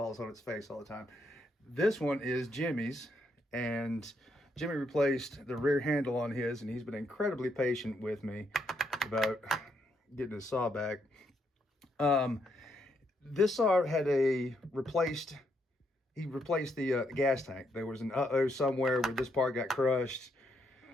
on its face all the time. This one is Jimmy's, and Jimmy replaced the rear handle on his, and he's been incredibly patient with me about getting his saw back. This saw had he replaced the gas tank. There was an uh-oh somewhere where this part got crushed.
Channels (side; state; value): both; normal; correlation 0.77